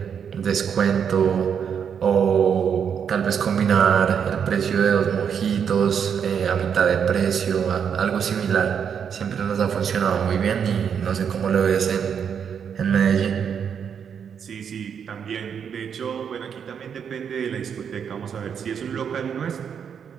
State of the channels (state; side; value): quieter; left; 7.5 dB